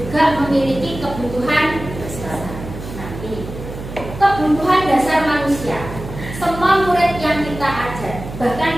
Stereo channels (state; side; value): noise; right; hum, 10 dB below the sound